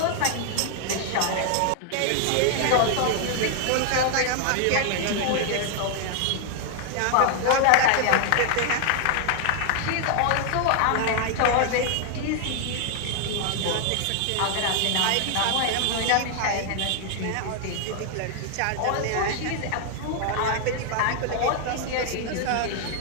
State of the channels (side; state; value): both; different; correlation 0.00